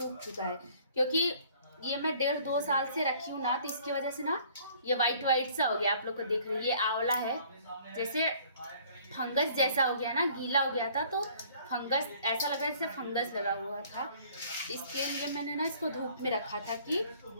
चुका है। क्योंकि ये मैं 1.5-2 साल से रखी हूँ ना, तो इसकी वजह से ना ये वाइट वाइट सा हो गया। आप लोग को देख रही है, ये आंवला है, जैसे फंगस जैसा हो गया ना, गीला हो गया था, तो फंगस ऐसा लग रहा है जैसे फंगस लगा हुआ था। इसके लिए मैंने ना इसको धूप में रखा था कि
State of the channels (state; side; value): inverted; both; correlation -0.55